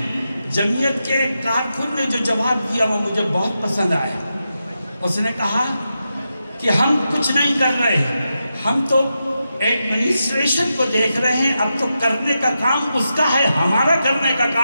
جمعیت کے کارکن نے جو جواب دیا وہ مجھے بہت پسند آیا۔ اس نے کہا کہ ہم کچھ نہیں کر رہے ہیں، ہم تو ایڈمنسٹریشن کو دیکھ رہے ہیں، اب تو کرنے کا کام اس کا ہے، ہمارا کرنے کا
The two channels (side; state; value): both; inverted; correlation -0.88